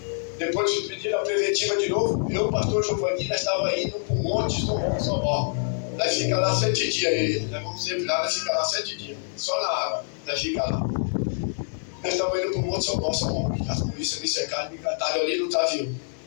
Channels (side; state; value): right; silent; digital silence